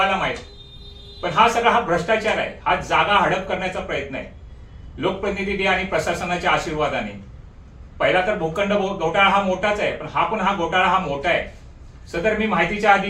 माहित. पण हा भ्रष्टाचार आहे. हा जागा हडप करण्याचा प्रयत्न आहे लोकप्रतिनिधी आणि प्रशासनाच्या आशीर्वादाने. पहिला तर भूखंड घोटाळा हा मोठाच आहे, पण हा घोटाळा हा मोठा आहे. सदर मी माहितीच्या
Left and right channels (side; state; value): both; identical; correlation 1.00